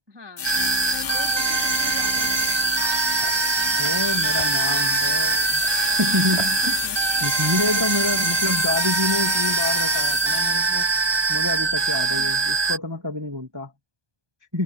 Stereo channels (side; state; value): left; late; 1.2 ms